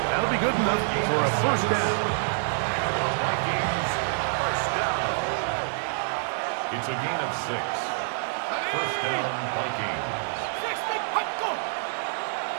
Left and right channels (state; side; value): silent; left; 60 dB below the other